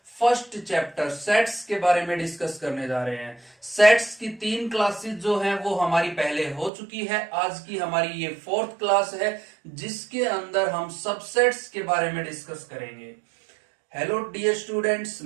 फर्स्ट चैप्टर सेट्स के बारे में डिस्कस करने जा रहे हैं। सेट्स की 3 क्लासेस जो हैं वो हमारी पहले हो चुकी है। आज की हमारी ये 4th क्लास है जिसके अंदर हम सबसेट्स के बारे में डिस्कस करेंगे। हेलो डियर स्टूडेंट्स,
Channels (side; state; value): left; drops out; at 6.7 s